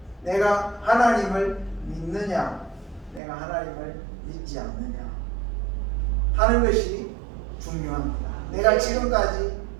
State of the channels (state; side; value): drops out; left; at 3.2 s